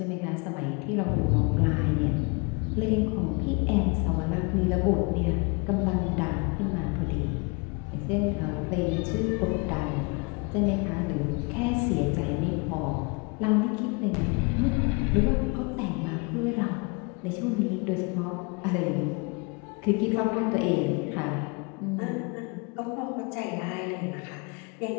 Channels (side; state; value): right; quieter; 31.4 dB